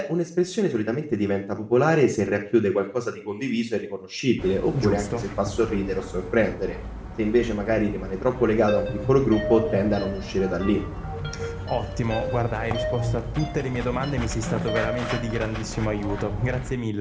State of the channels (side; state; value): both; identical; correlation 1.00